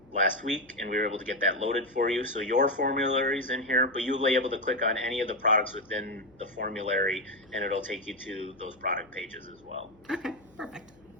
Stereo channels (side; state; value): left; noise; hum, 29 dB below the sound